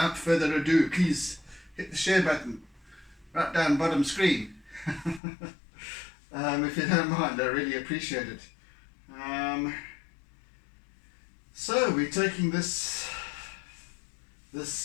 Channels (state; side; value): drops out; right; at 5.2 s